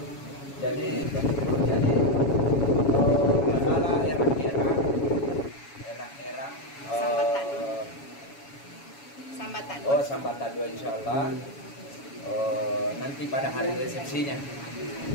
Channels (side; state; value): right; late; 7.2 ms